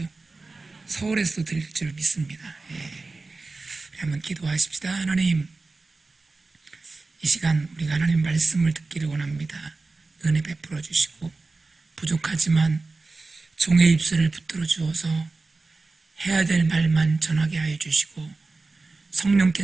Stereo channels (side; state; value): left; quieter; 3.6 dB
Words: 서울에서도 들릴 줄 믿습니다. 한번 기도하십시다. 하나님, 이 시간 우리가 하나님 말씀을 듣기를 원합니다. 은혜 베풀어 주시고 부족하지만 종의 입술을 붙들어 주어서 해야 될 말만 전하게 하여 주시고